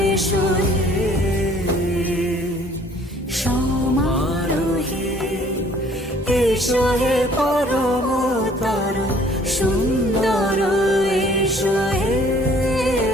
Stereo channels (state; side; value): normal; both; correlation 0.57